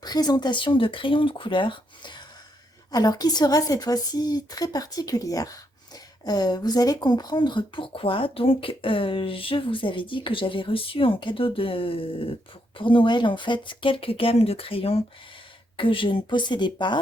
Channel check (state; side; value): normal; both; correlation 0.77